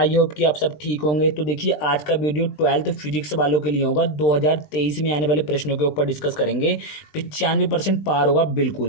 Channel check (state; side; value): late; right; 20 ms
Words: होप कि आप सब ठीक होंगे। तो देखिए, आज का वीडियो 12th फिजिक्स वालों के लिए होगा। 2023 में आने वाले प्रश्नों के ऊपर डिस्कस करेंगे। 95% पार होगा